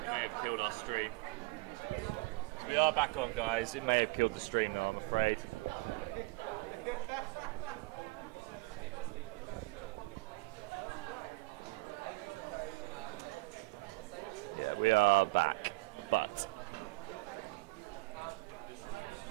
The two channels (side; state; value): left; quieter; 24.8 dB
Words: killed our stream. So we are back on, guys. It may have killed the stream now, I'm afraid. Yeah, we are back, but